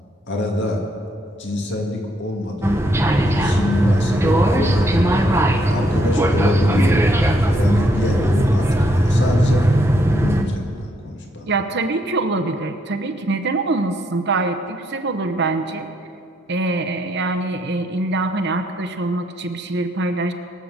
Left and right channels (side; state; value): both; normal; correlation 0.73